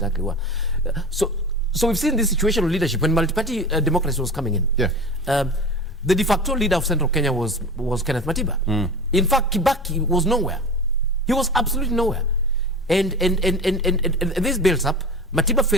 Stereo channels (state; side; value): normal; both; correlation 0.33